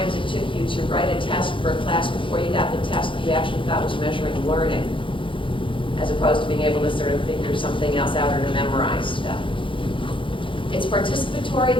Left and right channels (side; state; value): right; late; 0.25 ms